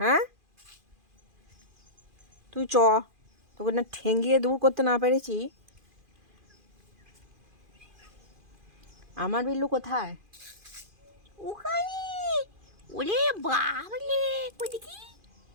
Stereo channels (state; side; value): late; left; 2.4 ms